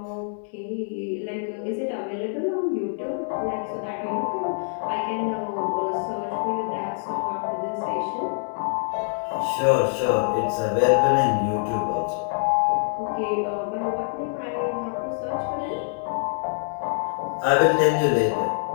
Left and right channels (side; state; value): right; silent; digital silence